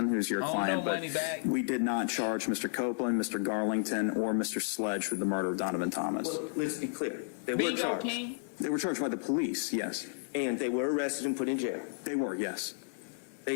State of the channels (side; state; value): right; silent; digital silence